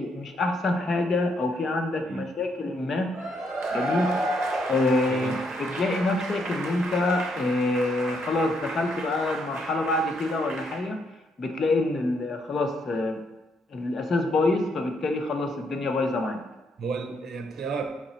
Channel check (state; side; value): normal; both; correlation 0.74